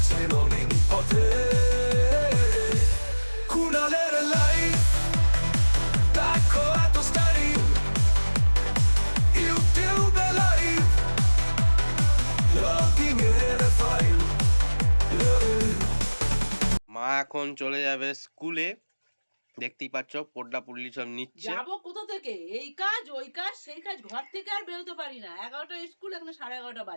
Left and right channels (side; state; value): both; inverted; correlation -1.00